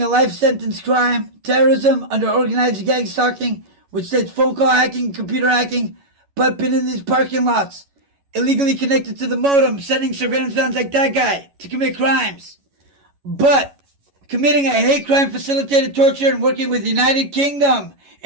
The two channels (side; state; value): left; late; 11 ms